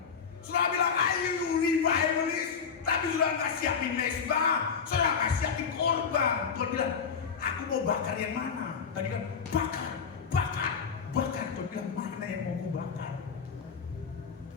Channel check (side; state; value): right; quieter; 6.2 dB